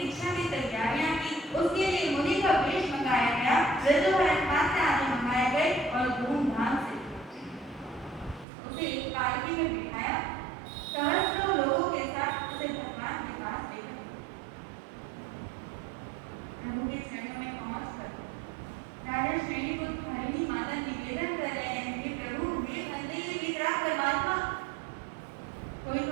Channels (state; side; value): drops out; left; at 8.5 s